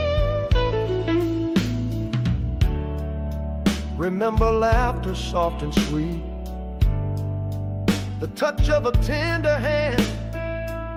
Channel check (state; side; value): identical; both; correlation 1.00